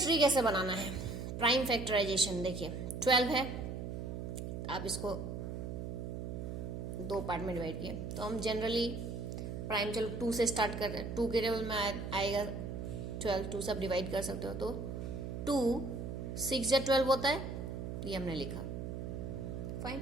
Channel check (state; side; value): noise; right; hum, 5 dB below the sound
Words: कैसे बनाना है? प्राइम फैक्टराइजेशन देखिए, 12 है, आप इसको 2 पार्ट में डिवाइड किए तो हम जनरली प्राइम, चलो 2 से स्टार्ट कर रहे हैं। 2 के टेबल में आएगा 12, 2 से आप डिवाइड कर सकते हो। तो 2 6 या 12 होता है, ये हमने लिखा। फाइन।